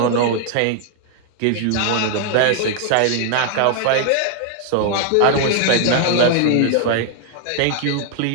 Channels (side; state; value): both; different; correlation 0.00